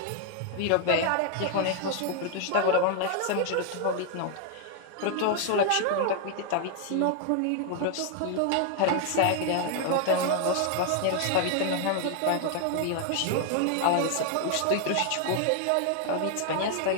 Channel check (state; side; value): different; both; correlation 0.00